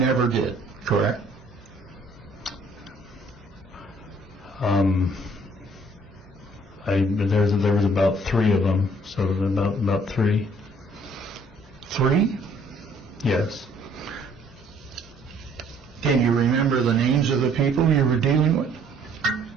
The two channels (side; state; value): both; normal; correlation 0.60